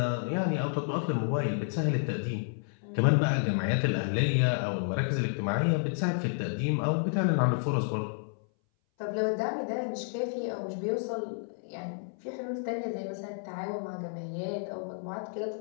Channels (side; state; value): right; silent; 57 dB below the other